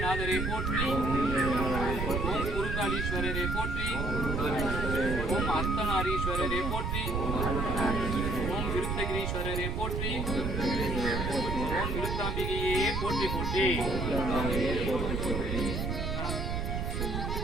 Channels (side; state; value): right; noise; rumble, 1 dB below the sound